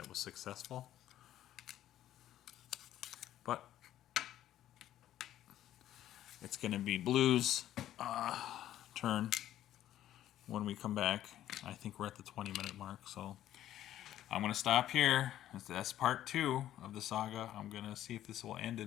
was successful. But it's going to be Blue's turn when we come back. I think we're at the 20-minute mark, so I'm going to stop here. That's part 2 of the saga. I'm going to see if this will end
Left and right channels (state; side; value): quieter; right; 12.5 dB